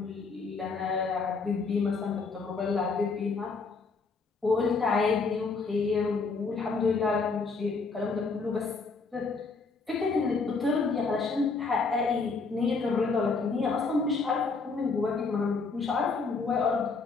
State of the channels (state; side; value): quieter; right; 4.4 dB